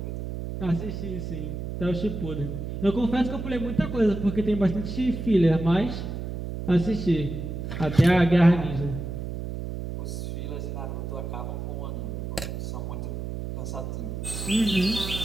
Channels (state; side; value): noise; right; hum, 5 dB below the sound